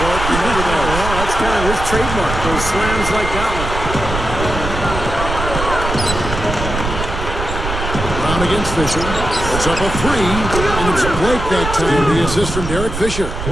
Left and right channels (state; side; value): noise; right; rumble, 5 dB below the sound